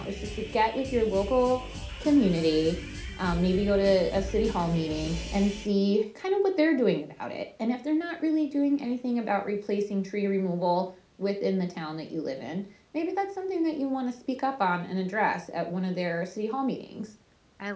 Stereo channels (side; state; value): both; identical; correlation 1.00